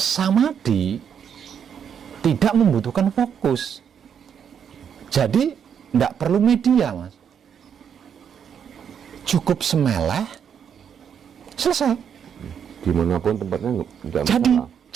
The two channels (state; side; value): quieter; left; 7.9 dB